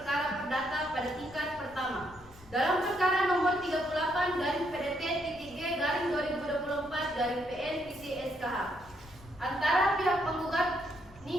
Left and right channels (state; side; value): noise; left; rumble, 23 dB below the sound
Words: perdata pada tingkat pertama dalam perkara nomor 38/PDT-Garing 2024/PN-SKH antara pihak penggugat